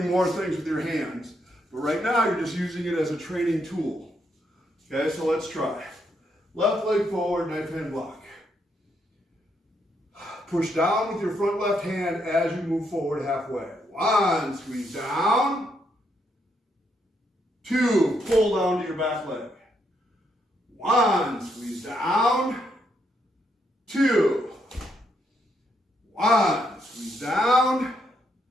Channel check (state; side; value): normal; both; correlation 0.77